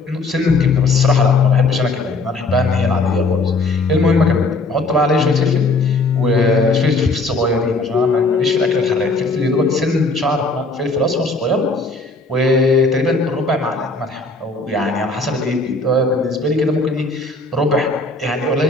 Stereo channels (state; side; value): quieter; right; 3.3 dB